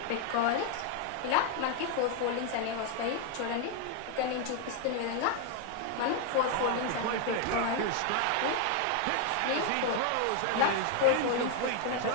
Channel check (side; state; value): both; different; correlation 0.01